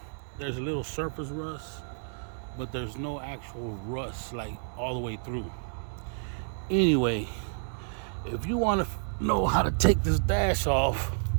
there's a little surface rust, but there's no actual rust like all the way through. Anyway, if you want to know how to take this dash off,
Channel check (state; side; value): silent; left; 58 dB below the other